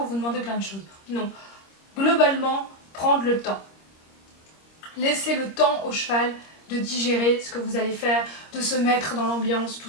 vous demander plein de choses. Non. Globalement, prendre le temps. Laissez le temps au cheval de digérer ce que vous allez faire, de se mettre dans l'ambiance,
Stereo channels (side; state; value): right; late; 26 ms